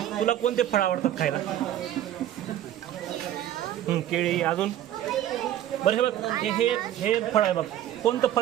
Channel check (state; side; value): quieter; left; 11.9 dB